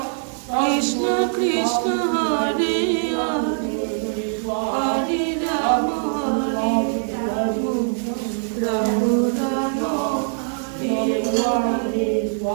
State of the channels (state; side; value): silent; left; digital silence